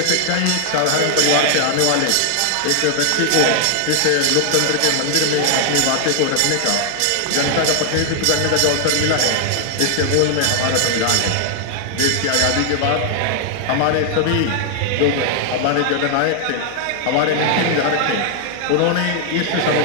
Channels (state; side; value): different; both; correlation 0.00